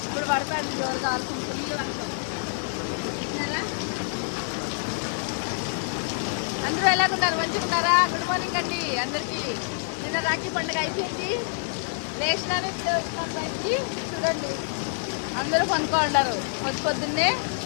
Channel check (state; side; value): silent; right; digital silence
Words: ఇప్పుడు పడుతుంది జోరుగా వర్షం, ఫుల్ వర్షం. అందరూ ఎలాగున్నారు? మంచిగున్నారా? గుడ్ మార్నింగ్ అండి అందరికీ. నిన్న రాఖీ పండుగ అయిపోయింది, లేచినాను బయటికి. చూడండి అందరూ పనుకోండారు పొద్దున్నే.